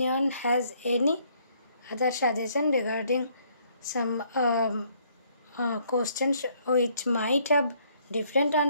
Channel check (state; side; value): inverted; both; correlation -0.66